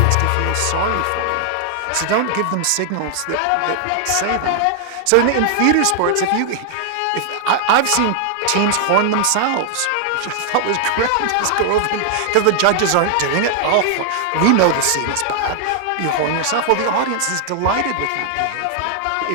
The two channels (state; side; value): different; both; correlation 0.00